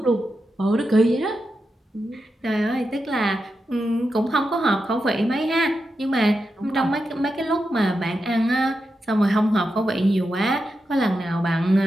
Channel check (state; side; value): normal; both; correlation 0.88